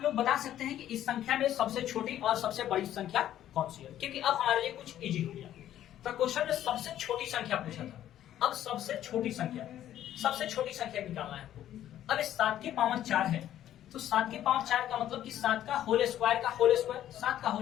लोग बता सकते हैं कि इस संख्या में सबसे छोटी और सबसे बड़ी संख्या कौन सी है, क्योंकि अब हमारे लिए कुछ इजी हो गया। तो क्वेश्चन में सबसे छोटी संख्या पूछा था, अब सबसे छोटी संख्या निकालना है आपको। अब इस 7 के पावर 4 है, तो 7 के पावर 4 का मतलब कि 7 का होल स्क्वायर का होल स्क्वायर, 7 का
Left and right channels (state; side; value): quieter; right; 11.9 dB